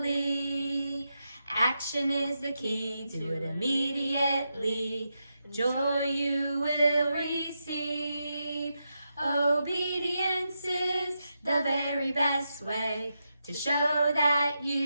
Action is the key, do it immediately. Joy you will receive. Obedience is the very best way to show that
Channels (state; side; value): inverted; both; correlation -0.86